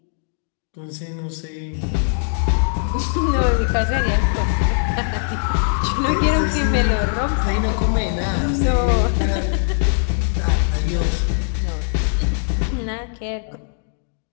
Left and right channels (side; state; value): right; silent; digital silence